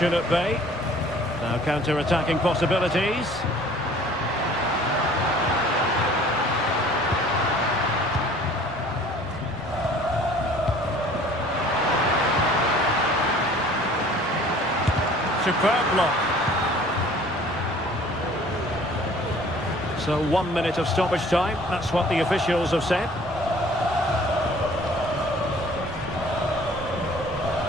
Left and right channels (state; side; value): normal; both; correlation 0.51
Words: at bay. Now counter-attacking possibilities. Superb block. So 1 minute of stoppage time. That's what the officials have said.